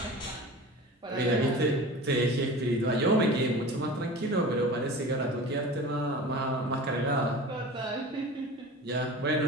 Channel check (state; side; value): normal; both; correlation 0.36